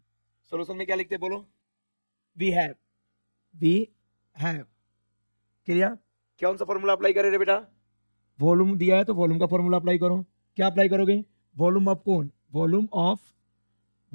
में क्या लिखते हैं बोलो, वी हैव, क्लियर, कौन सा फॉर्मूला अप्लाई करें रे बेटा, वॉल्यूम दिया है तो वॉल्यूम का फॉर्मूला अप्लाई करो, क्या अप्लाई करोगे, वॉल्यूम ऑफ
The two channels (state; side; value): inverted; both; correlation -1.00